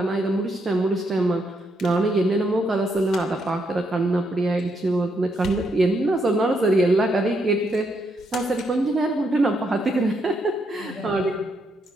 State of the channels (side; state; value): both; normal; correlation 0.77